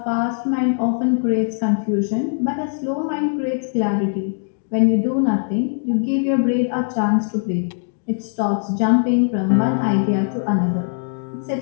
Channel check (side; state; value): right; silent; digital silence